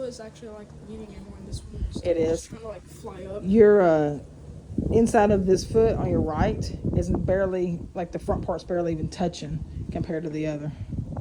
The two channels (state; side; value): identical; both; correlation 1.00